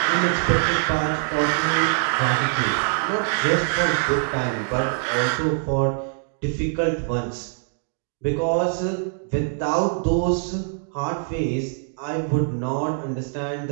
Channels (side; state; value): left; silent; digital silence